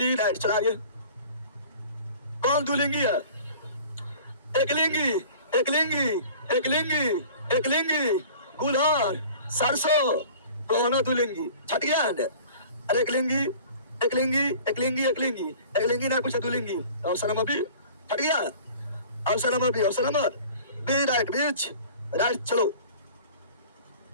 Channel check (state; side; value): inverted; both; correlation -0.45